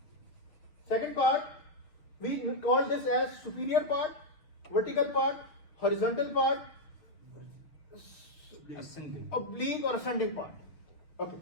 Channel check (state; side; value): late; right; 6.4 ms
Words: Second part, we call this as superior part, vertical part, horizontal part, Ascending. oblique or ascending part. Okay.